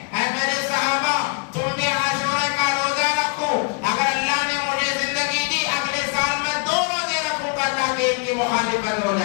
اے میرے صحابہ تم بھی عاشورہ کا روزہ رکھو، اگر اللہ نے مجھے زندگی دی اگلے سال میں 2 روزے رکھوں گا تاکہ ان کی مخالفت ہو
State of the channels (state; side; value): quieter; right; 34.7 dB